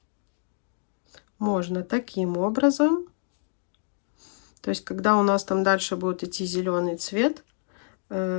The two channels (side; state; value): right; silent; digital silence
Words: Можно таким образом. То есть, когда у нас там дальше будет идти зеленый цвет,